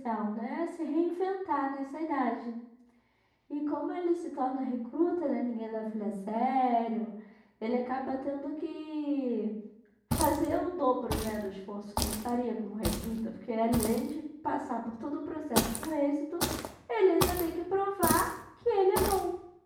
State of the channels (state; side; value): identical; both; correlation 1.00